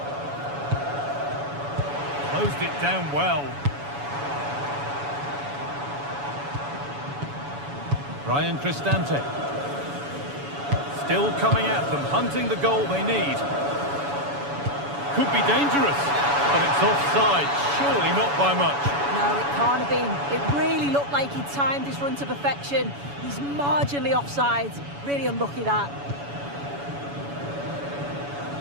Closed it down well. Brian Cristante. Still coming at them, hunting the goal they need. Could be dangerous, but it's offside. Surely not by much. No, it can't have been. It really looked like he timed his run to perfection. He's marginally offside. Really unlucky, that.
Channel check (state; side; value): late; left; 7.1 ms